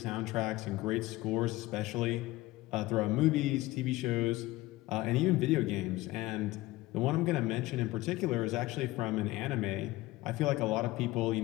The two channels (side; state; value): right; quieter; 18.6 dB